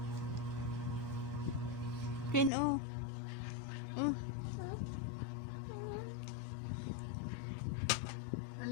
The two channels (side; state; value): right; drops out; at 2.5 s